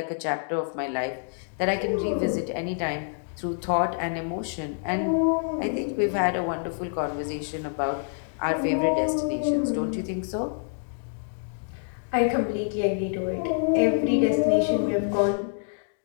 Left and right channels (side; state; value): right; silent; digital silence